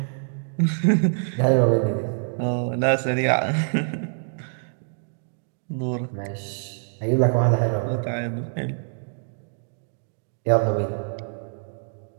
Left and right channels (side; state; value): left; silent; digital silence